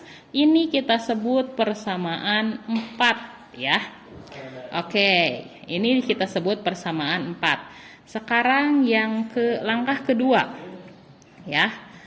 Ini kita sebut persamaan 4 ya. Oke, ini kita sebut persamaan 4. Sekarang yang ke langkah kedua ya.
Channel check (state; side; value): identical; both; correlation 1.00